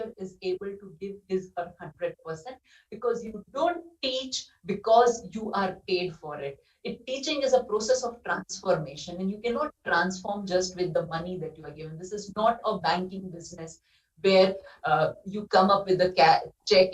is able to give his or 100%, because you don't teach because you are paid for it. Teaching is a process of transformation, and you cannot transform just with the money that you are given. This is not a banking business where you come up with a check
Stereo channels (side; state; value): both; identical; correlation 1.00